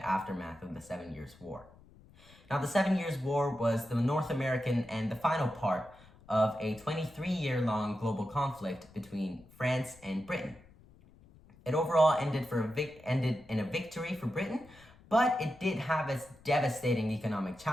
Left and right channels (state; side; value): noise; left; rumble, 25 dB below the sound